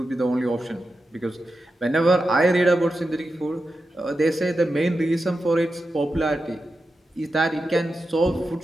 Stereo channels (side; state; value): both; normal; correlation 0.90